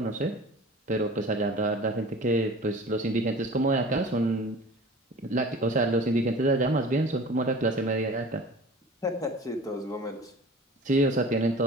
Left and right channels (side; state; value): both; normal; correlation 0.41